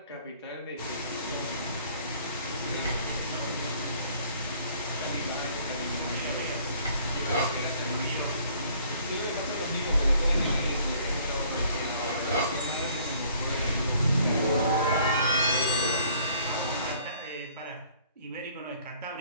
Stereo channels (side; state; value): both; inverted; correlation -0.58